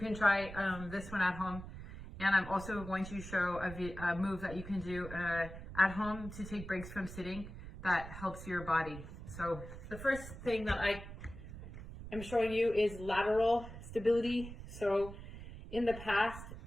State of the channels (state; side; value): noise; right; rumble, 12 dB below the sound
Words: try this one at home. And I'm also going to show a move that you can do at home to take breaks from sitting that helps your body. So the first thing that I am showing you is lateral stability. So in the past,